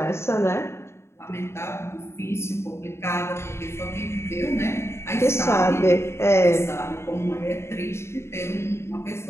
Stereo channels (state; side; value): late; right; 0.13 ms